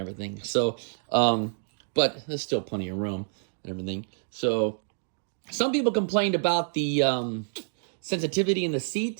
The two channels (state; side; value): silent; left; digital silence